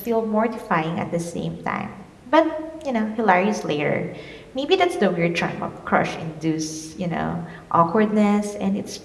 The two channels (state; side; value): identical; both; correlation 1.00